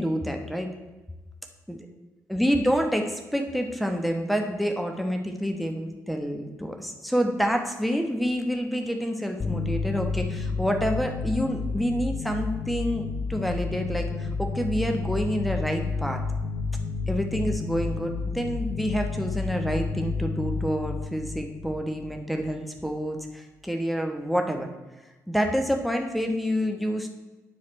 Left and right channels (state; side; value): normal; both; correlation 0.88